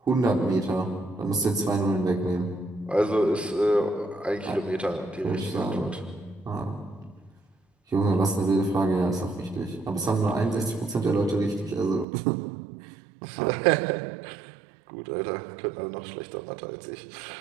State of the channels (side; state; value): left; drops out; at 12.1 s